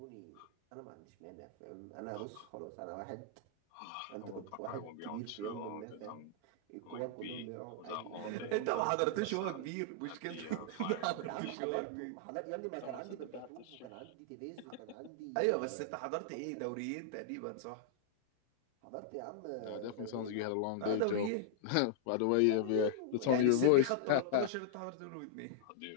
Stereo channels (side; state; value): both; different; correlation -0.01